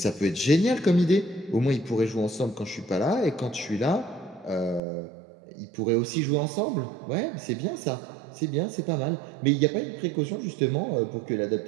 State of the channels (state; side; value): drops out; left; at 4.8 s